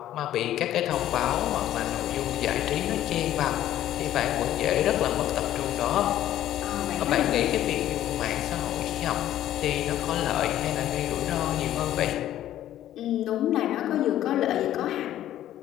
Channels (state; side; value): quieter; right; 12.5 dB